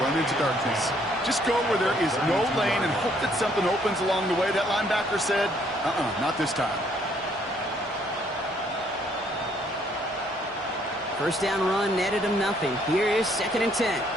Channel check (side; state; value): both; normal; correlation 0.66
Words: run into darkness. Just go where there is no lane and hope that something opens along the way. That linebacker said, not this time. First down run netted him nothing. Here is second and 10.